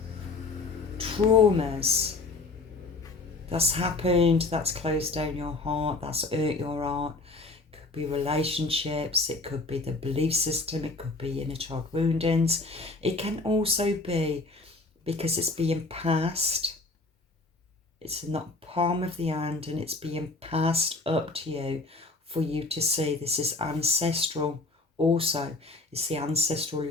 traumas that's happened, that's closed down your heart, that's hurt your heart. It could be relationships, it could be the belief system, it could be inner child woundings. It can also be because it's being passed. It's in the palm of the hand and it's being passed up to you for you to see. This is ancestral also. It's the ancestral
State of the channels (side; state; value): right; quieter; 3.4 dB